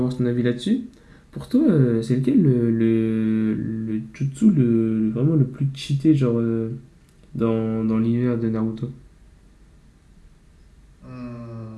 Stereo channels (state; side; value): identical; both; correlation 1.00